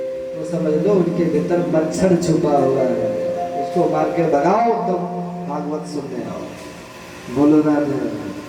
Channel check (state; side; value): identical; both; correlation 1.00